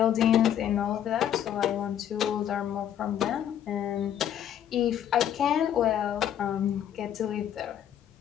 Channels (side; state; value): right; quieter; 10.2 dB